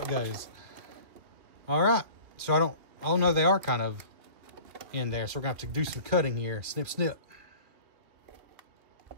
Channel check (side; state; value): left; late; 2.6 ms